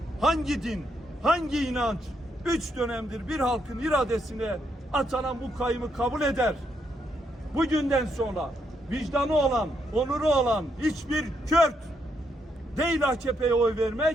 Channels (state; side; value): normal; both; correlation 0.78